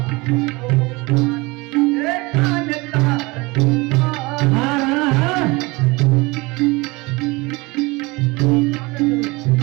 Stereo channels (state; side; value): quieter; left; 24.2 dB